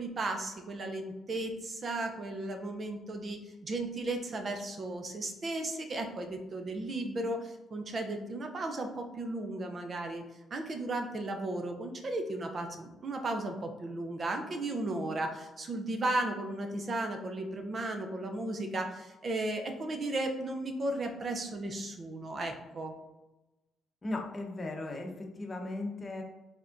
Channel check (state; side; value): normal; both; correlation 0.76